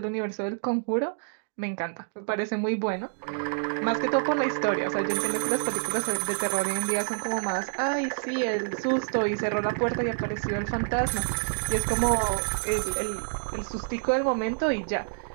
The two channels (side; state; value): left; silent; digital silence